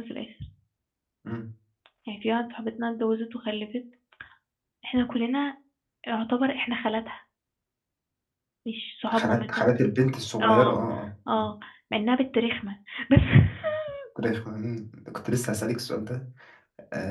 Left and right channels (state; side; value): identical; both; correlation 1.00